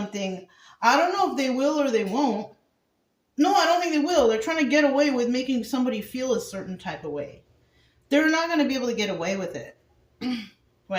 I don't know if they will or they won't. No, I don't think they will. They're trying to get away with making somebody feel a certain type of way. They're not going to be able to get away with it.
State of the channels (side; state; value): both; identical; correlation 1.00